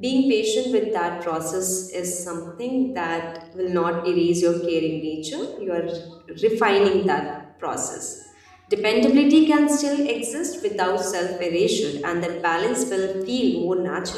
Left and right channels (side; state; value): both; identical; correlation 1.00